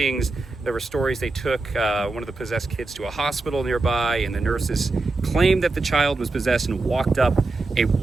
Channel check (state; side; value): quieter; left; 3.4 dB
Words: There were stories they took one of the possessed kids to a hospital nearby, and the nurses claimed that the child was possessed and walked up a